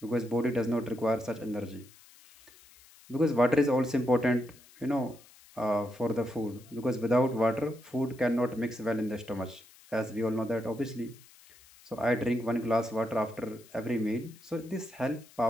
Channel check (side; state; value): left; noise; hiss, 24 dB below the sound